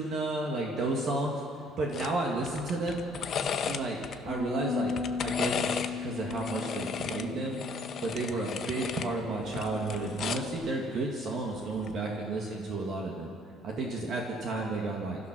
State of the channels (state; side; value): normal; both; correlation 0.60